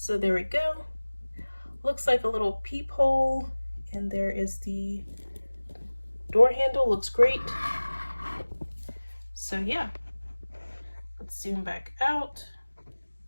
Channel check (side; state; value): both; inverted; correlation -1.00